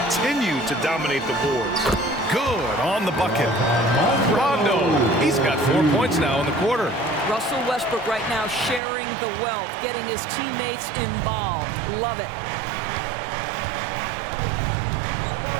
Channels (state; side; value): drops out; left; at 8.8 s